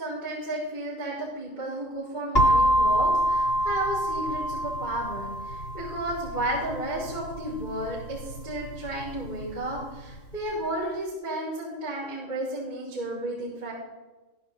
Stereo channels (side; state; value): right; late; 2.9 ms